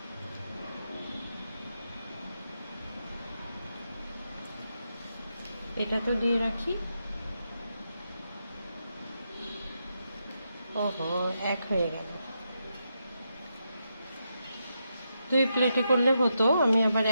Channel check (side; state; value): both; inverted; correlation -0.84